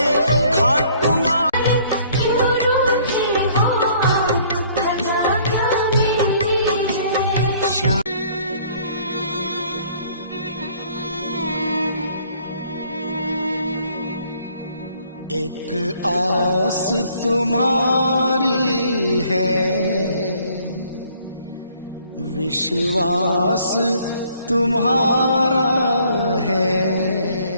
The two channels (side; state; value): both; inverted; correlation -0.60